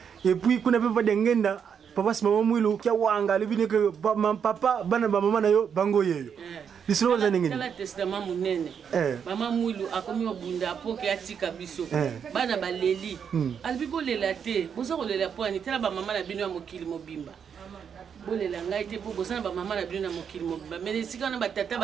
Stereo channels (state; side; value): quieter; left; 7.3 dB